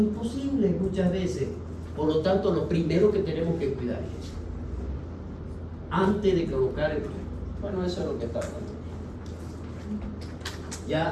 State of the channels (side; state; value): both; identical; correlation 1.00